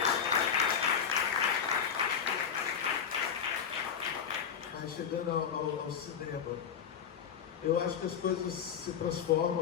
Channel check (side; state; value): right; quieter; 7.5 dB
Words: Mas chegando ao cinema, eu acho que as coisas se